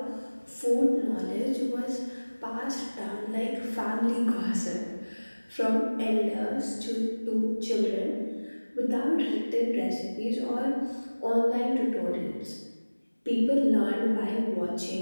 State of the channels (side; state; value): both; inverted; correlation -1.00